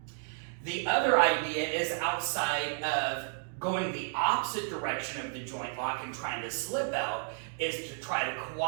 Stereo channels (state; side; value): silent; left; 56 dB below the other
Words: The other idea is outside of going the opposite direction of the joint lock and trying to slip out, is to try to